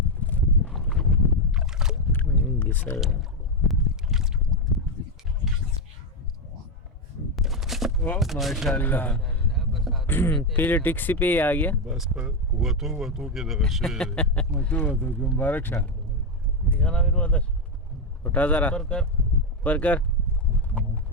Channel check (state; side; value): normal; both; correlation 0.08